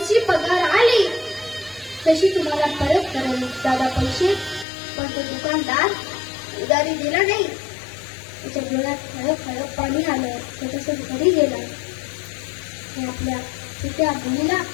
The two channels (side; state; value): right; drops out; at 4.7 s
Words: पगार आली तशी तुम्हाला परत करेल दादा पैसे. पण तो दुकानदार उदारी दिला नाही. त्याच्या डोळ्यात खळप पाणी आलं. त्याच्यासोबत घरी गेला आणि आपल्या छोट्या मुलीला